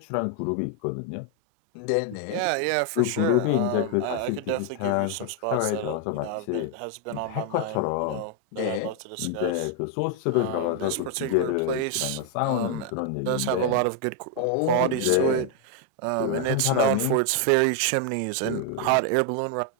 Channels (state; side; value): different; both; correlation 0.00